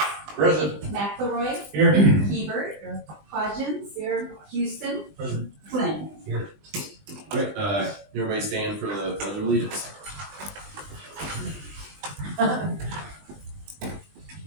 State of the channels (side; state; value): left; late; 20 ms